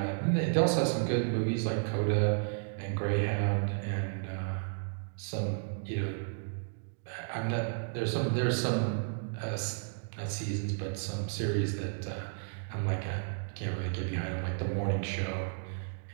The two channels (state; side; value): silent; left; digital silence